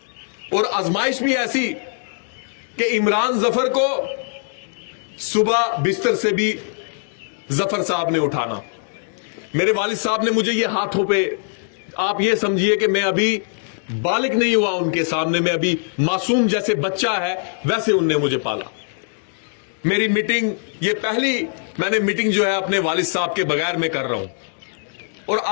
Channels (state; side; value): silent; right; digital silence